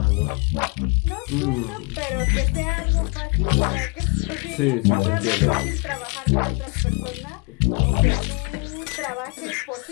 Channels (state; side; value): quieter; right; 33.4 dB